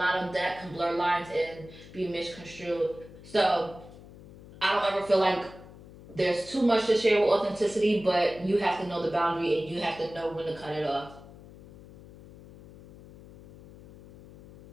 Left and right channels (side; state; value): left; noise; hum, 19 dB below the sound